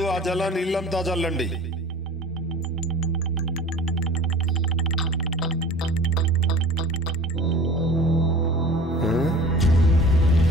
ఆ జలాన్ని ఇల్లంతా చల్లండి.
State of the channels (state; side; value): normal; both; correlation 0.41